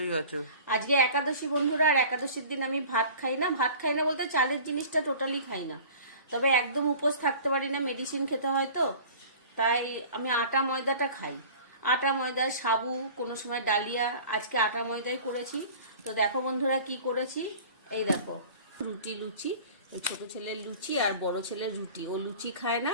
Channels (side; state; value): both; inverted; correlation -0.43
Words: আছে। আজকে একাদশী বন্ধুরা, আর একাদশীর দিন আমি ভাত খাই না। ভাত খাই না বলতে চালের জিনিসটা টোটালি খাই না, তবে একদম উপোস থাকতে পারি না, মেডিসিন খেতে হয় তো, তাই আমি আটা ময়দাটা খাই। আটা ময়দা, সাবু, কোনো সময় ডালিয়া। আজকে আটা ময়দাই করেছি। তো দেখো বন্ধুরা কি করেছি, এই দেখো রুটি লুচি। এই ছোট ছেলের লুচি আর বড় ছেলের রুটি। ও লুচি খায় না,